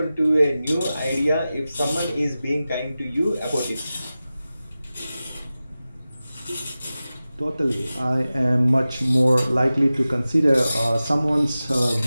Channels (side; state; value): both; inverted; correlation -0.95